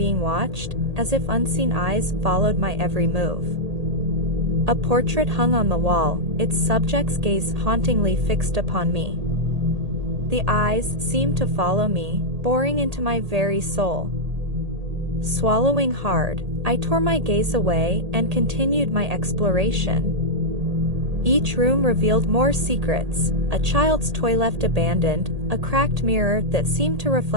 watched, as if unseen eyes followed my every move. A portrait hung on the wall, its subject's gaze hauntingly fixed upon me. The eyes seemed to follow me, boring into my very soul. Swallowing hard, I tore my gaze away and continued my exploration. Each room revealed more secrets: a child's toy left abandoned, a cracked mirror that seemed to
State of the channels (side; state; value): left; late; 1.8 ms